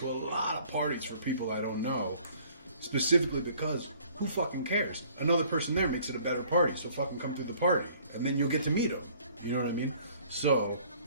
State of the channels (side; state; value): both; inverted; correlation -0.56